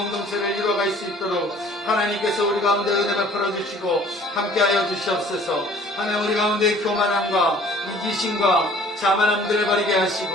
이루어갈 수 있도록 하나님께서 우리 가운데 은혜 베풀어 주시고 함께하여 주시옵소서. 하나님 우리 가운데 교만함과 이기심과 자만함들을 버리게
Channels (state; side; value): normal; both; correlation 0.53